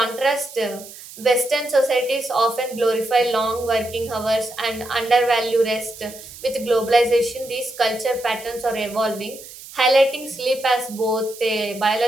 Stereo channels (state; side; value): noise; right; hiss, 16 dB below the sound